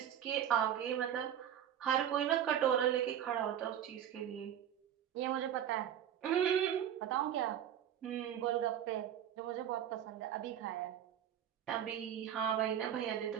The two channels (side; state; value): left; quieter; 10.0 dB